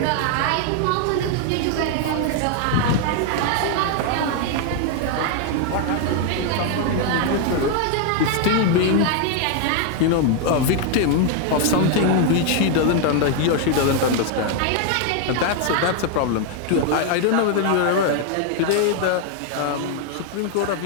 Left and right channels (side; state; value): both; different; correlation 0.00